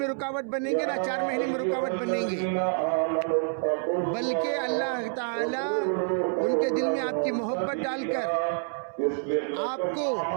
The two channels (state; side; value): silent; left; 60 dB below the other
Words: रुकावट बनेंगे, ना 4 महीने में रुकावट बनेंगे, बल्कि अल्लाह ताला उनके दिल में आपकी मोहब्बत डालकर आपको